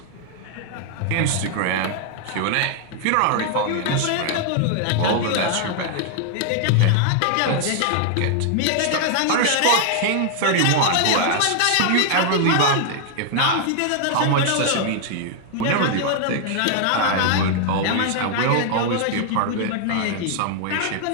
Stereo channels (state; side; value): different; both; correlation 0.00